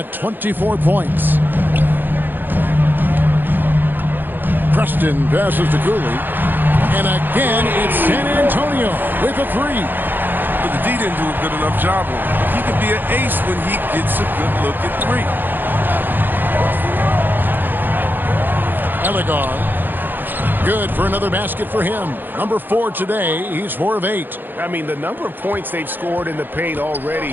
24 points. Preston passes to Cooley. And again, it's San Antonio with a 3. But the D didn't do a good enough job on him. He could be an ace when he gets a good look at 3. Elegar. Good for another basket for him. Number 4 today. He's 4 of 8. I mean, the number of points they've scored in the paint already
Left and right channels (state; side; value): late; left; 0.092 ms